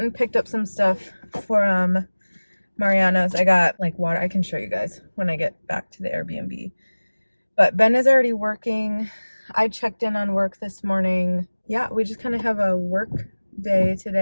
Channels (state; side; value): inverted; both; correlation -1.00